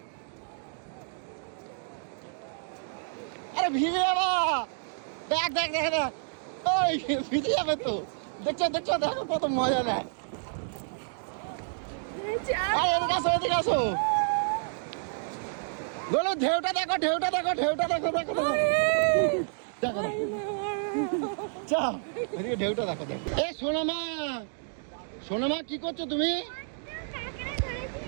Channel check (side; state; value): left; silent; digital silence